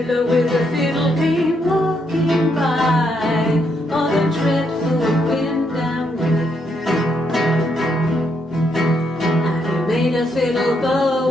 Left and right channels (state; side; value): normal; both; correlation 0.77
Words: with a fiddle came walking by, oh, the dreadful wind and rain. And he made a fiddle